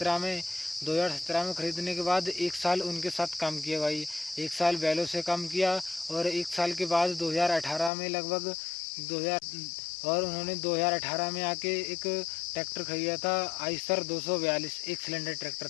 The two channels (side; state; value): right; drops out; at 7.9 s